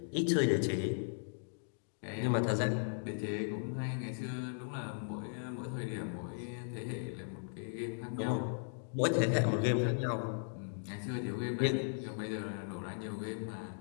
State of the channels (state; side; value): silent; right; digital silence